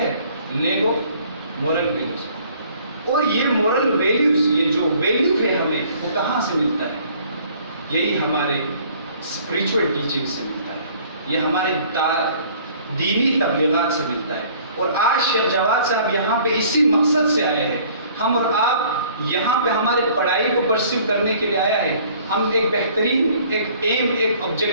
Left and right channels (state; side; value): inverted; both; correlation -0.55